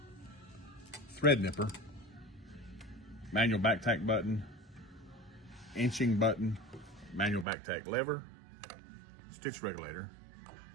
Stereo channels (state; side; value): drops out; left; at 7.5 s